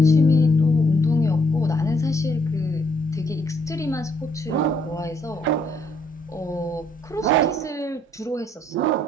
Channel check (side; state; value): both; normal; correlation 0.69